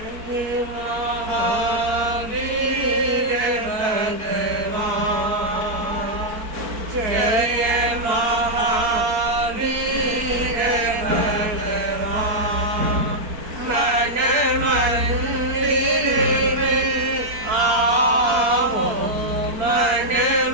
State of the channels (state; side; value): late; left; 4.6 ms